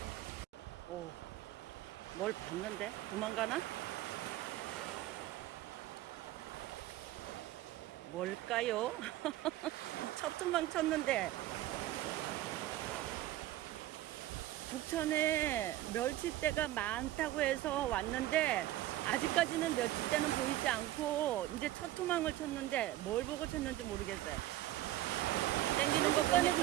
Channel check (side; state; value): left; quieter; 14.9 dB